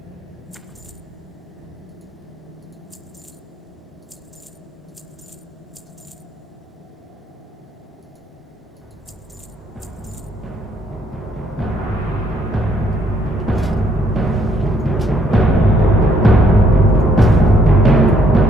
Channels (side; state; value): both; normal; correlation 0.69